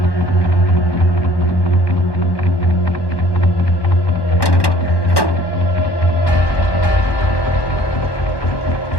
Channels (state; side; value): late; right; 1.1 ms